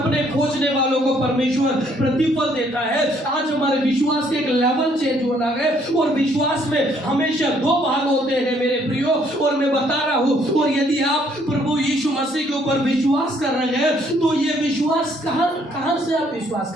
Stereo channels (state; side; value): normal; both; correlation 0.66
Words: खोजने वालों को परमेश्वर प्रतिफल देता है। आज हमारे विश्वास के एक लेवल चेंज होना है, और विश्वास में हमेशा 2 भाग होते हैं मेरे प्रियो। और मैं बता रहा हूं, और यदि आप प्रभु यीशु मसीह के ऊपर विश्वास कर रहे हैं तो ये विश्वास कहां से आप विश्वास